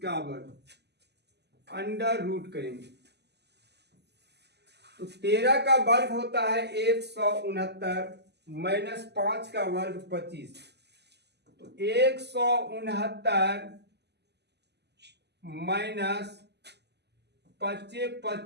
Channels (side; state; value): left; late; 0.49 ms